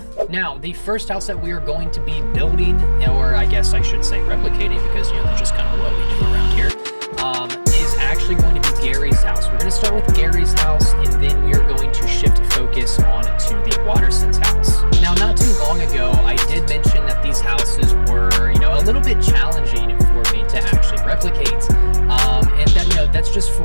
Now, the first house that we are going to be building, or I guess I should say replicating, because that's just kind of what we do around here, is actually going to be Gary's house. We're going to start with Gary's house, and then we are going to shift focus on to the Watterson's house. Now, not too long ago, I did mention that these houses were, a little bit challenging for me to actually replicate, and that, that's just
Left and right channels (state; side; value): inverted; both; correlation -1.00